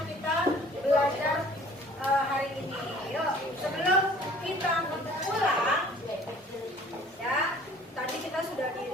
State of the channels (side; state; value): both; normal; correlation 0.52